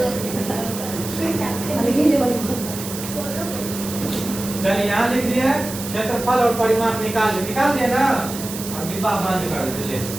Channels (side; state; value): right; noise; hiss, 9 dB below the sound